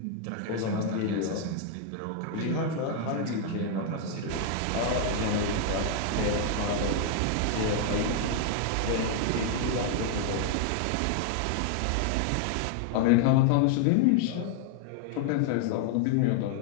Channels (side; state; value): both; different; correlation 0.00